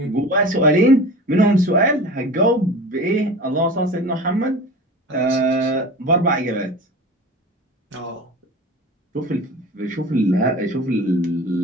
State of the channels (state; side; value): normal; both; correlation 0.35